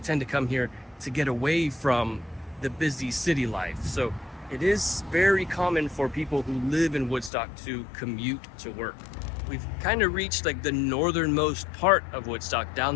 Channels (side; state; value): right; drops out; at 7.3 s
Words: to come here to get away from the busy city life. So it is very common for people who live in Woodstock to commute to work. We've kind of reached like the northernmost part of Woodstock. Down